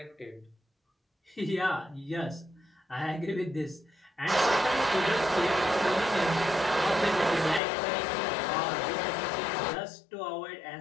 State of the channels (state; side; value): drops out; right; at 7.6 s